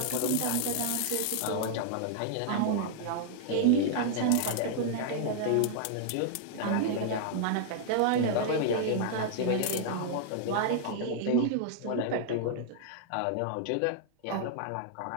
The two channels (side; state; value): both; different; correlation -0.01